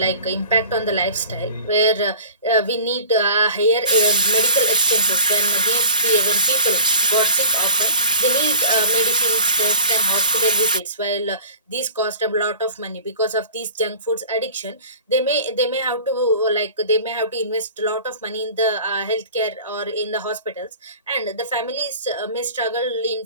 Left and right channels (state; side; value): inverted; both; correlation -0.42